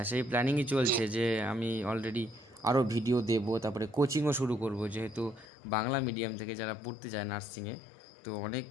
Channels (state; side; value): drops out; right; at 5.5 s